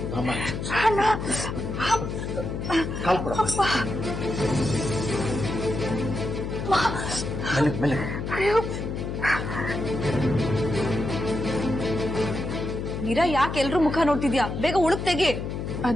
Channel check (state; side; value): noise; left; hum, 4 dB below the sound